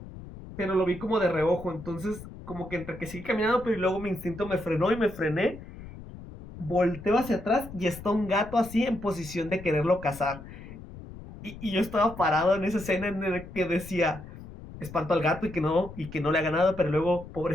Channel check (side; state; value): left; noise; rumble, 14 dB below the sound